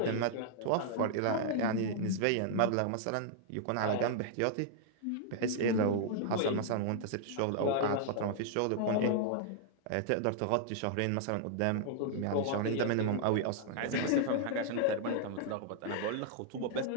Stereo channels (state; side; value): different; both; correlation -0.01